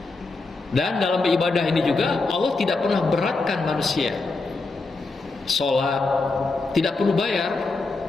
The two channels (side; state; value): right; quieter; 3.6 dB